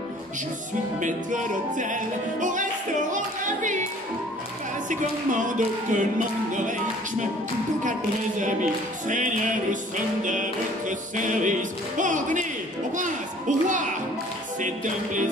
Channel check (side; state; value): both; normal; correlation 0.53